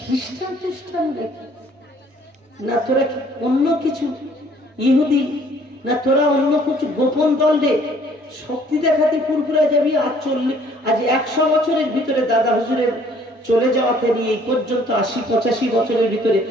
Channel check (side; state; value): both; normal; correlation 0.59